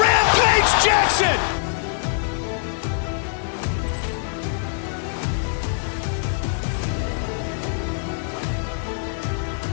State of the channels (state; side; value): silent; right; digital silence